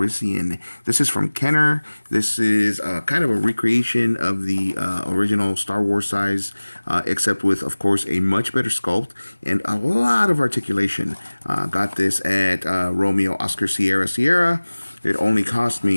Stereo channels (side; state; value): both; inverted; correlation -1.00